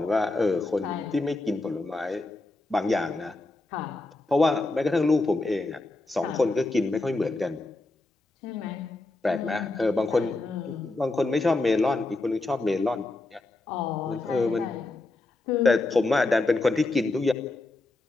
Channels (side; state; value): right; quieter; 3.1 dB